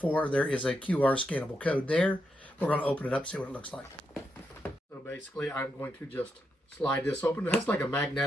There is a QR scannable code there. We're going to open it up, see what it looks like. So basically I'm going to just slide this open. It has like a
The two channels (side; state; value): both; normal; correlation 0.83